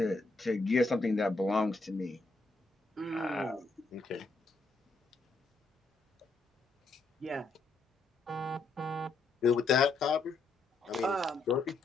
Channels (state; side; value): quieter; right; 3.6 dB